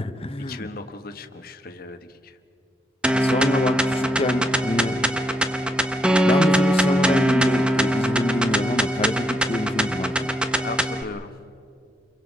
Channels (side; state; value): both; normal; correlation 0.77